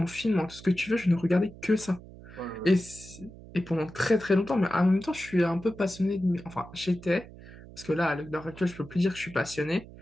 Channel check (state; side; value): noise; right; hum, 18 dB below the sound